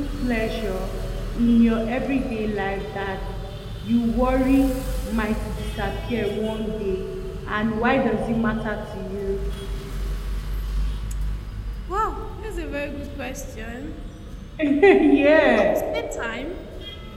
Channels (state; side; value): identical; both; correlation 1.00